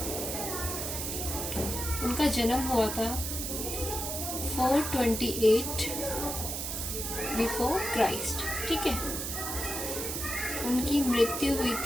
उनका जन्म हुआ था 428 बिफोर क्राइस्ट। ठीक है, उनकी मृत्यु हुई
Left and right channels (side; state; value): right; noise; hiss, 3 dB below the sound